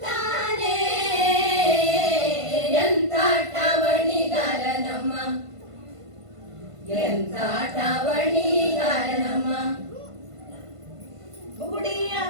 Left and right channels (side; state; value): left; late; 1.5 ms